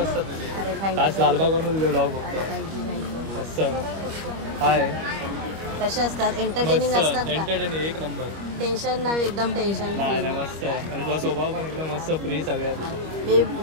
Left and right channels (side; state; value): left; late; 25 ms